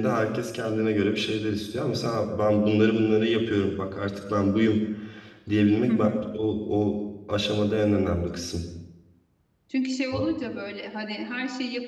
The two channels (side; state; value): both; identical; correlation 1.00